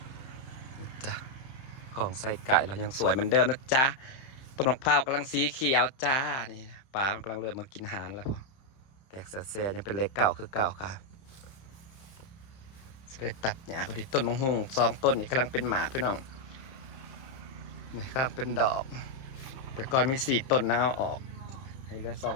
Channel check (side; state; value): right; late; 31 ms